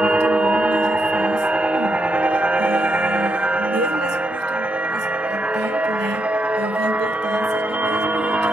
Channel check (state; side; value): normal; both; correlation 0.81